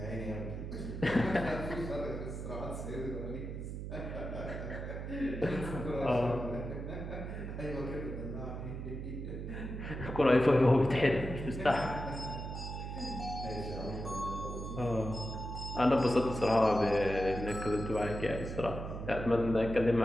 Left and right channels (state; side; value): noise; right; hum, 6 dB below the sound